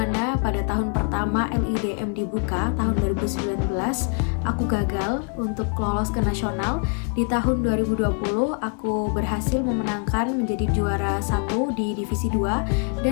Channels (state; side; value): quieter; right; 39.7 dB